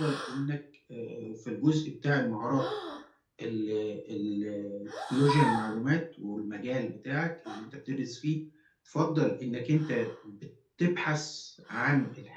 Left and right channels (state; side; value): identical; both; correlation 1.00